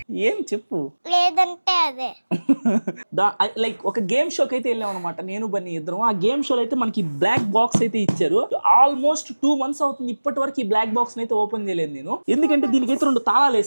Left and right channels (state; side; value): inverted; both; correlation -1.00